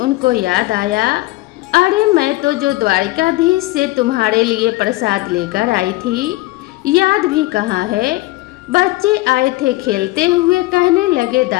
याद आया, अरे मैं तो जो द्वारिकाधीश से तुम्हारे लिए प्रसाद लेकर आई थी, याद भी कहाँ है। बच्चे आए थे खेलते हुए, कहने लगे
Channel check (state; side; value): quieter; right; 19.9 dB